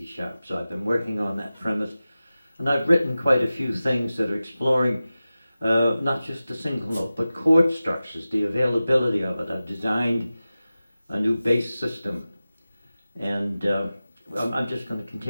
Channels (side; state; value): both; inverted; correlation -0.96